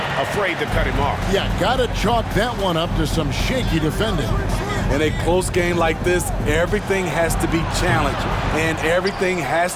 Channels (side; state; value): both; identical; correlation 1.00